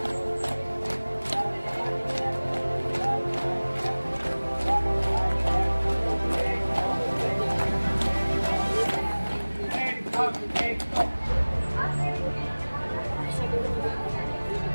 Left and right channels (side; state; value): both; inverted; correlation -1.00